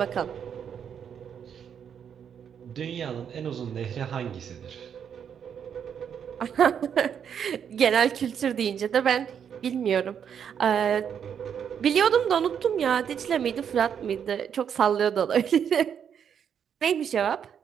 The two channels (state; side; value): quieter; left; 8.0 dB